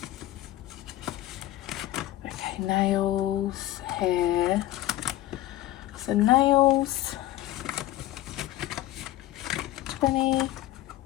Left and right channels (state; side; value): quieter; right; 15.3 dB